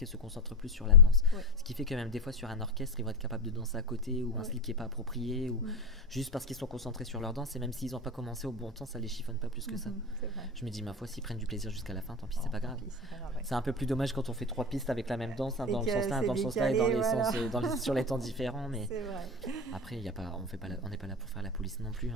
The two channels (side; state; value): both; normal; correlation 0.19